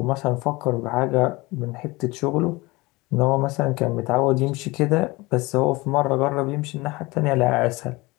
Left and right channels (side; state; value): right; quieter; 22.8 dB